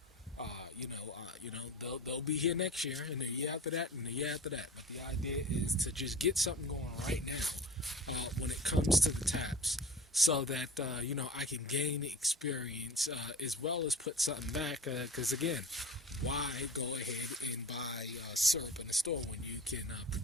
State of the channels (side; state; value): both; normal; correlation 0.39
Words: they'll be here next year, and the year after that, and the year after that. But the idea is to just get something going right now when it comes to the taps, so that I can gain experience as well as put something back. Because again, why go ahead and buy syrup in the store when you can